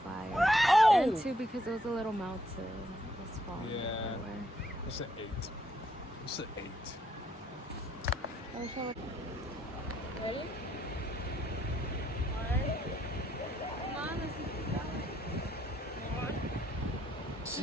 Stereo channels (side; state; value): both; normal; correlation 0.72